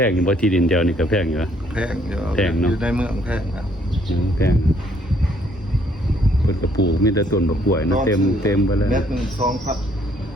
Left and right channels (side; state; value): both; normal; correlation 0.66